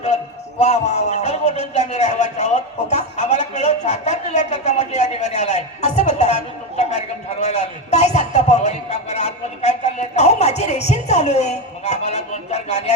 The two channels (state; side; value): normal; both; correlation 0.13